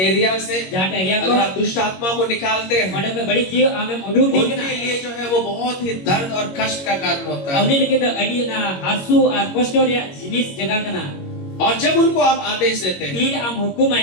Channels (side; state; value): right; late; 21 ms